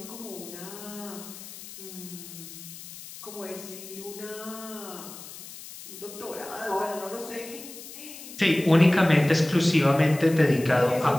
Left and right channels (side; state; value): left; noise; hiss, 14 dB below the sound